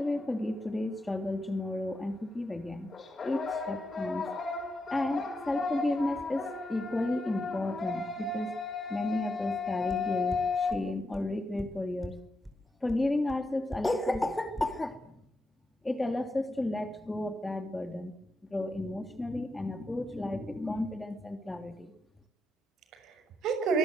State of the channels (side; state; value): both; normal; correlation 0.84